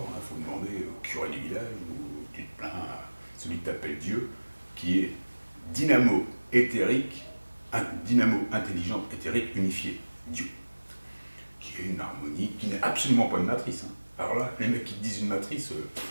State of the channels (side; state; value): both; inverted; correlation -1.00